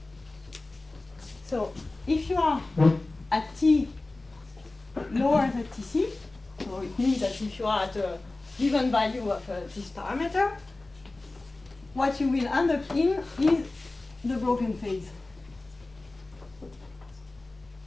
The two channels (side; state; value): right; quieter; 3.1 dB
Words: So if you are at t lower than tc, so it means that if you are at a given value of this parameter, what you will end up in is the broken phase.